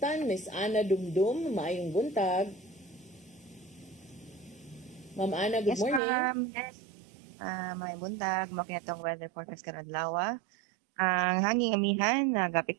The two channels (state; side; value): drops out; left; at 6.0 s